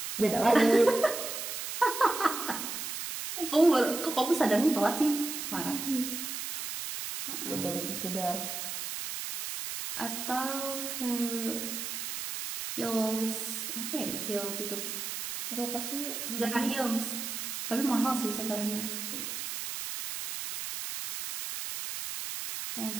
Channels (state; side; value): noise; right; hiss, 5 dB below the sound